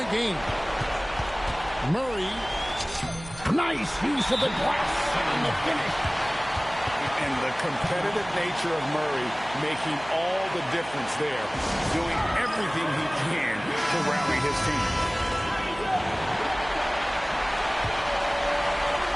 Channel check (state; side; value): noise; right; hum, 17 dB below the sound